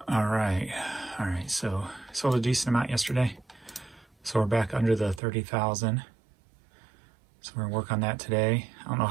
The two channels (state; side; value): drops out; left; at 5.2 s